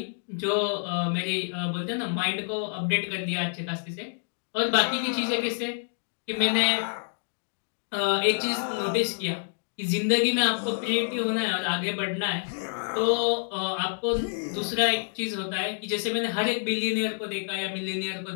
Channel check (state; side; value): silent; right; digital silence